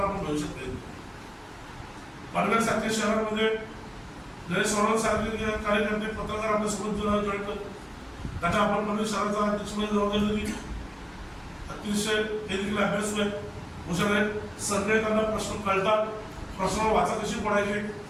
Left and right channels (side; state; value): both; identical; correlation 1.00